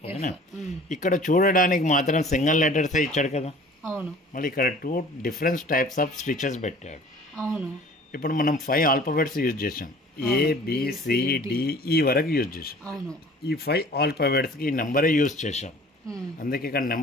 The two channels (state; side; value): normal; both; correlation 0.48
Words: ఇక్కడ చూడడానికి మాత్రం సింగిల్ లెటర్స్ ఇచ్చాడు కదా. అవును. మళ్ళీ ఇక్కడ 2 డిఫరెంట్ టైప్స్ ఆఫ్ స్టిచెస్ పెట్టాడు. అవును. ఇప్పుడు మనం 5 ఆల్ఫాబెట్స్ యూజ్ చేసాం. ABCDE వరకు యూజ్ చేసాం. అవును. ఈ 5 ఆల్ఫాబెట్స్కి ఈ నెంబరే యూజ్ చేసాం. అందుకే ఇక్కడ